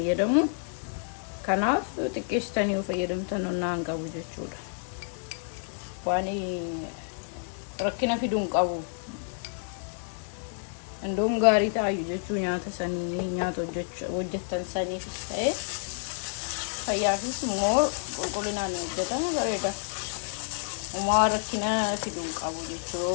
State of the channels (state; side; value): silent; right; digital silence